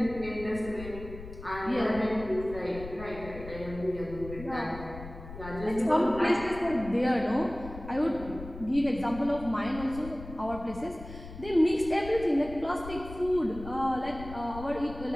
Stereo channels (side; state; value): left; noise; rumble, 13 dB below the sound